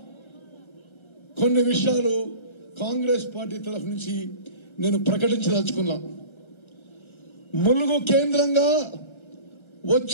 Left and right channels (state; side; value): late; right; 1.3 ms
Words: కొన్ని విషయాలు కాంగ్రెస్ పార్టీ తరఫు నుంచి నేను ప్రకటించదలుచుకున్నా. ములుగు కేంద్రంగా